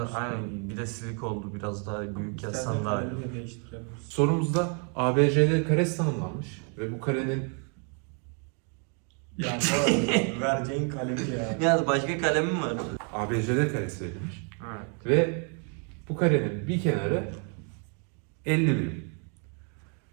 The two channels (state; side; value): quieter; left; 39.9 dB